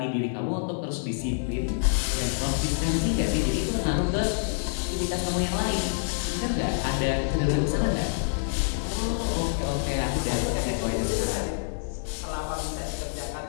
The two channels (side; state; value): right; silent; 60 dB below the other